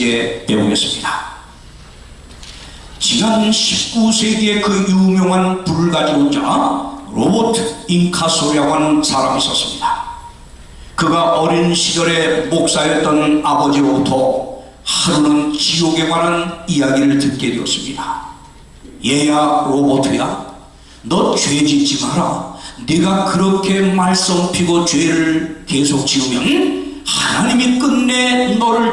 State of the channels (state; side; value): identical; both; correlation 1.00